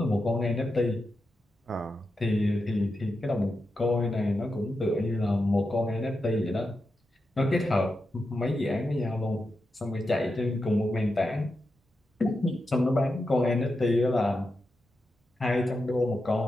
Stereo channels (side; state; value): both; normal; correlation 0.88